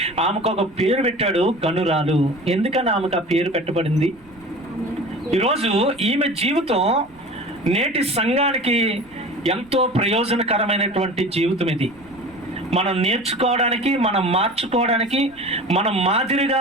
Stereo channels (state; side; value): noise; right; rumble, 28 dB below the sound